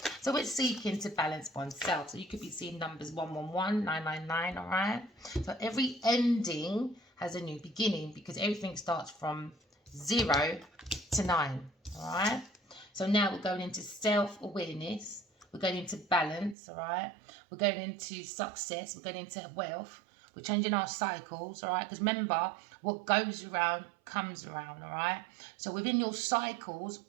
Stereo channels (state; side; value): drops out; left; at 16.6 s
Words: So we're seeking to balance oneself. So you could be seeing numbers 111, 999, all right? So every ending has a new beginning because everything starts from 0 to 9, all right? So now we're going into self-awareness. We're going into balance, all right? We're going into success. We're going into wealth. We're changing our cycles, all right? Because remember, what goes around comes around, all right? So within your cycles,